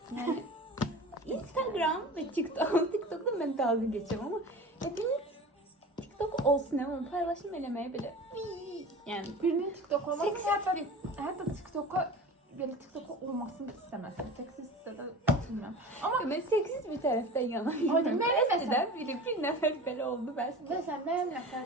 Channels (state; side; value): normal; both; correlation 0.36